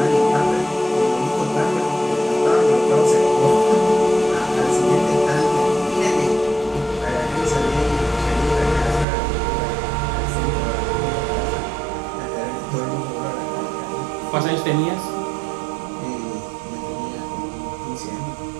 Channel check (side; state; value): left; drops out; at 9.1 s